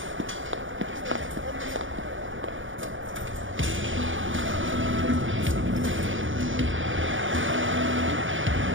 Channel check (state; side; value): late; left; 0.57 ms